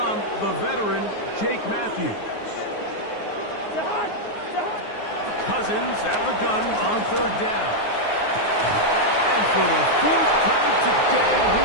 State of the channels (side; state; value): right; late; 9.5 ms